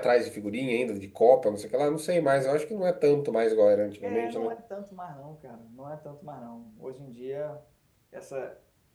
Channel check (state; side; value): identical; both; correlation 1.00